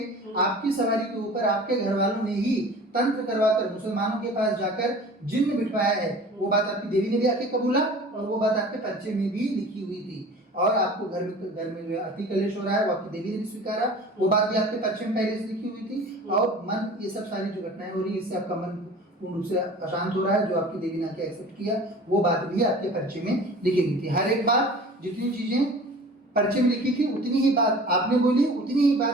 आपकी सवारी के ऊपर आपके घर वालों ने ही तंत्र करवाकर मुसलमानों के पास जाकर जिन्न बिठवाया है, वो बात आपकी देवी ने भी आके कबूला, और वो बात आपके परिचय में भी लिखी हुई थी। और आपको घर में जो है अति कलेश हो रहा है, वो आपकी देवी ने भी स्वीकारा, वो बात भी आपके परिचय में पहले से लिखी हुई थी। और मन, ये सब सारी जो घटनाएं हो रही है, इससे आपका मन पूर्ण रूप से अशांत हो रहा है, जो आपकी देवी ने आके एक्सेप्ट किया, वो बात भी आपके परिचय में लिखी हुई थी। हर एक बात, जितनी चीजें परिचय में लिखी थी, उतनी ही बात आपने बोली, उतनी ही बात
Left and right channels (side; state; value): both; normal; correlation 0.42